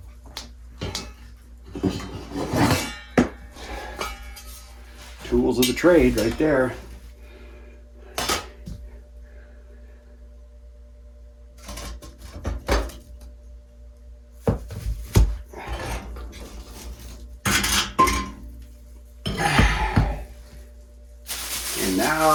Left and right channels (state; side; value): identical; both; correlation 1.00